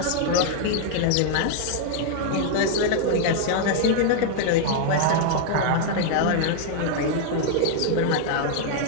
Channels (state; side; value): different; both; correlation 0.00